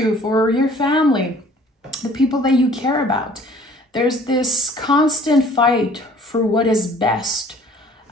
for your family, the people that you care about. There's this constant fight for what is best,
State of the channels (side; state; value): both; normal; correlation 0.54